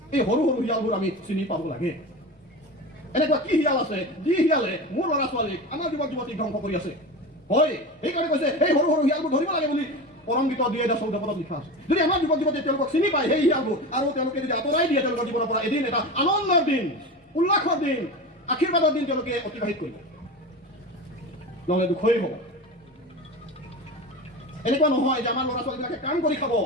এই সৰু সৰু শিয়ালবোৰ আমি চিনি পাব লাগে। এনেকুৱা কি শিয়াল আছে যি শিয়ালে মোৰ ল'ৰা ছোৱালীক, আমাৰ যুৱক যুৱতীক ধ্বংস কৰি আছে? হয়, সেইকাৰণে কৈছে সেই সৰু সৰু শিয়ালবোৰ ধৰিব লাগে বুলি পৰমগীত ২,০১৪ লিখা আছে। যদি আমাৰ যুৱক যুৱতীয়ে তেওঁলোকক চিনি পায় সেই শিয়ালবোৰ, আৰু তেওঁলোকে যদি আঁতৰাই দিয়ে তেওঁলোকৰ জীৱনৰ পৰা, এদিন এটা আনন্দৰ দিন, উল্লাসৰ দিন, আশীৰ্বাদৰ দিন তেওঁলোকে অতিবাহিত কৰিব, নহ'লে দুখেই হ'ব। এনেকুৱা নহয় যে আমাৰ ল'ৰা ছোৱালীবিলাকে কাম কৰি খাব,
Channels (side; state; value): both; normal; correlation 0.27